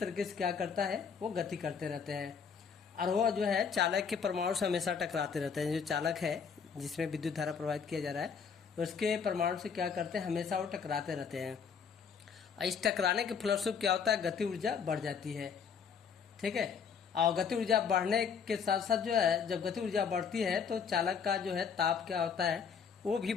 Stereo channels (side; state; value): right; quieter; 6.4 dB